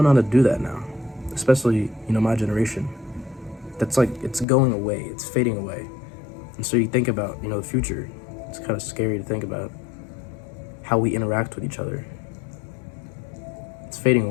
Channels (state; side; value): drops out; right; at 4.5 s